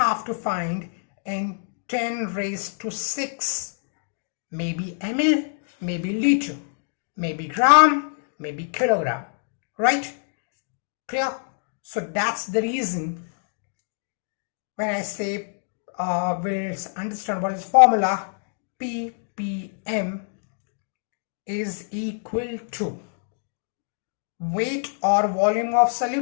to find in 10 raised to 6, maybe ml, maybe liter, maybe gram, maybe kilogram, right? Clear? So that's the reason when I say we'll understand what is formula. ppm is equal to weight or volume of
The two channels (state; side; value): silent; right; digital silence